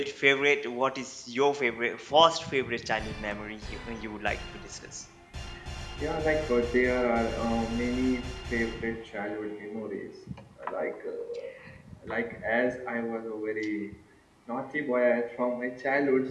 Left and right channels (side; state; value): both; identical; correlation 1.00